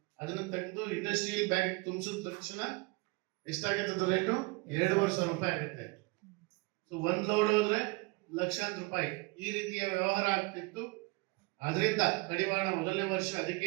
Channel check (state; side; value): quieter; left; 27.0 dB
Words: ಅದನ್ನ ತೆಗೆದು ಇಂಡಸ್ಟ್ರಿಯಲ್ ಬ್ಯಾಗ್ ತುಂಬಿಸಿದ ತಕ್ಷಣ ಎಷ್ಟಾಗುತ್ತೆ ರೇಟು? 2,500 ರೂಪಾಯಿ ಆಗುತ್ತೆ. ಸೊ 1 ಲೋಡ್ ಹೋದ್ರೆ ಲಕ್ಷಾಂತರ ರೂಪಾಯಿ ಈ ರೀತಿಯ ವ್ಯವಹಾರ ಆಗ್ತಿತ್ತು. ಅದರಿಂದ ಕಡಿವಾಣ ಮೊದಲನೇ ವರ್ಷ ಅದಕ್ಕೆ